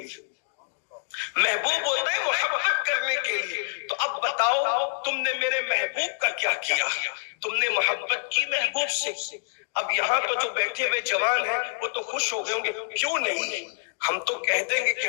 محبوب ہوتا ہے محبت کرنے کے لیے۔ تو اب بتاؤ تم نے میرے محبوب کا کیا کیا؟ تم نے محبت کی محبوب سے۔ اب یہاں تو جو بیٹھے ہوئے جوان ہیں وہ تو خوش ہو گئے ہوں گے، کیوں نہیں؟ ہم تو کہہ دیں گے کہ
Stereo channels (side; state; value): right; silent; digital silence